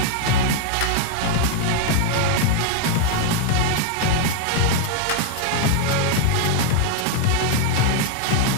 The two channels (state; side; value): different; both; correlation 0.00